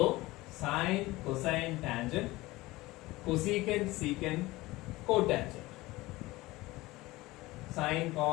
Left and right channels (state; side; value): quieter; right; 19.7 dB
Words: sine, cosine, tangent, cosecant, secant, cotangent. Sine,